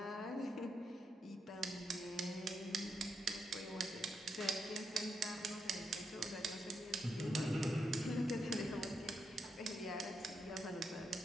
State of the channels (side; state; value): both; normal; correlation 0.82